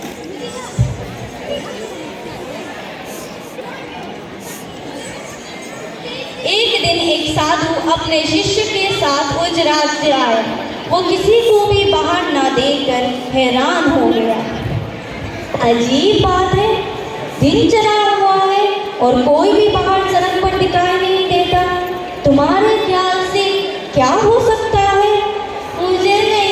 एक दिन एक साधु अपने शिष्य के साथ उस राज्य आए। वो किसी को भी बाहर ना देखकर हैरान हो गया। अजीब बात है, दिन चढ़ा हुआ है और कोई भी बाहर सड़क पर दिखाई नहीं देता। तुम्हारे ख्याल से क्या हो सकता है? मुझे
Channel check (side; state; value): both; identical; correlation 1.00